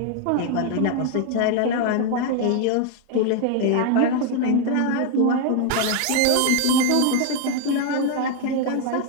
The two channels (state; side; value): different; both; correlation 0.01